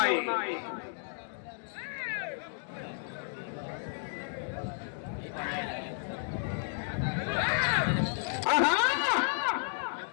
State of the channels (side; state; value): right; silent; digital silence